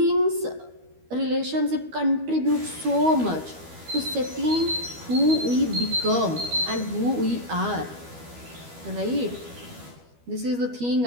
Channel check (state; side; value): late; left; 12 ms